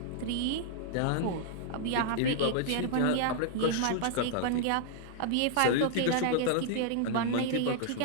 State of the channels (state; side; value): different; both; correlation -0.01